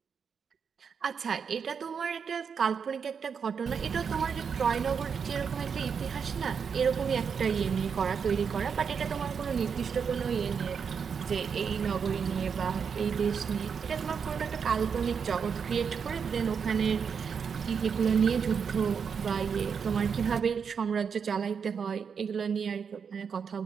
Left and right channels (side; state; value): left; quieter; 6.5 dB